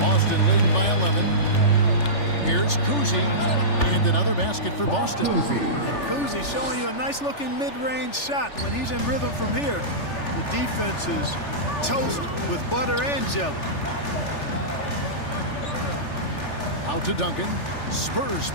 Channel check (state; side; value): late; right; 3.4 ms